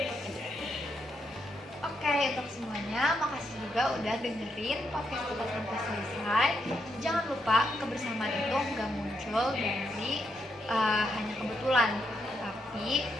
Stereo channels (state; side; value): normal; both; correlation 0.80